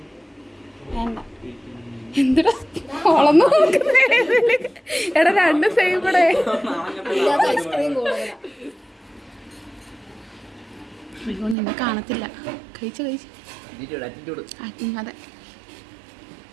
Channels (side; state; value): left; drops out; at 11.6 s